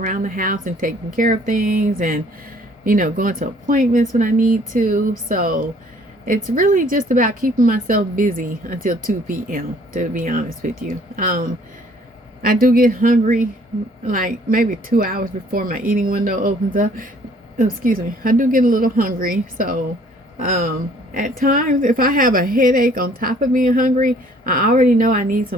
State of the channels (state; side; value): normal; both; correlation 0.58